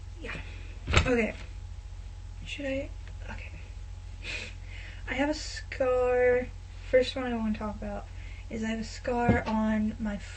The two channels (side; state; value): both; identical; correlation 1.00